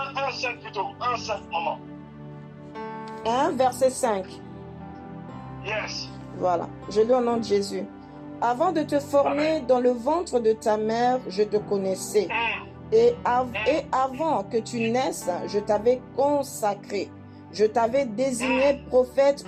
5 plutôt. 1, 5, maman. 1, verset 5. Yes. Voilà, je lis au nom de Jésus. Avant de te former dans le ventre de ta mère, je te connaissais. Et avant que tu naisses, je t'avais consacré. Je t'avais désigné prophète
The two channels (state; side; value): identical; both; correlation 1.00